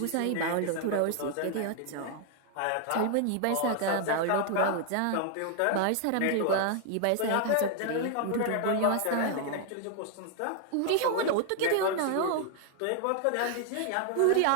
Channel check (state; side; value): different; both; correlation 0.00